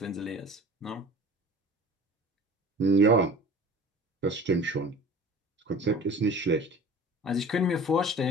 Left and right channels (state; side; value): normal; both; correlation 0.41